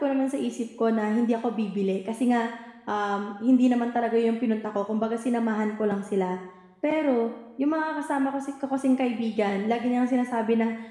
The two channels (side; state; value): both; identical; correlation 1.00